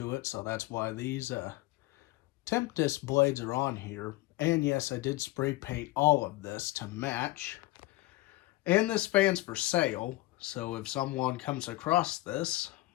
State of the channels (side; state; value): right; quieter; 18.9 dB